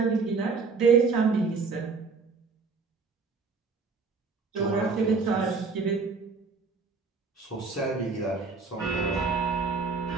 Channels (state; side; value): quieter; left; 4.6 dB